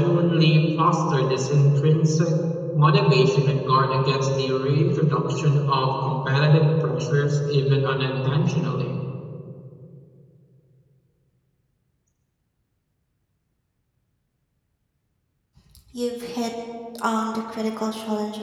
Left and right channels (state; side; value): identical; both; correlation 1.00